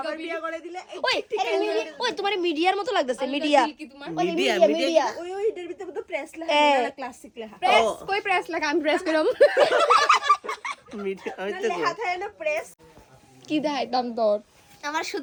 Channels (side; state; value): both; identical; correlation 1.00